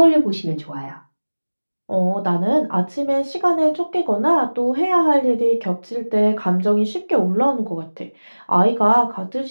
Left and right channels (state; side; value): inverted; both; correlation -1.00